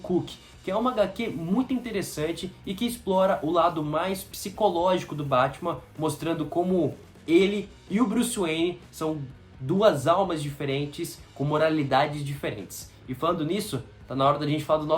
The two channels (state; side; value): identical; both; correlation 1.00